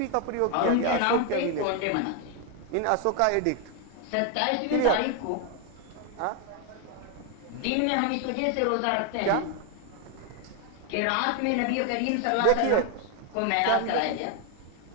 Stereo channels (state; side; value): different; both; correlation 0.01